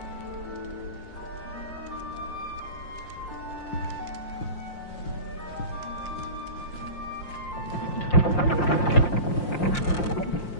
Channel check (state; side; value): late; right; 5.7 ms